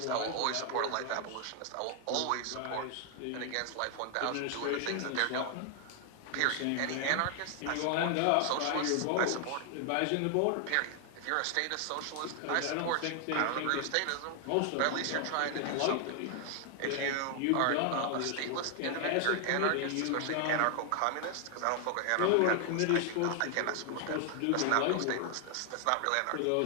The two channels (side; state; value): both; different; correlation 0.00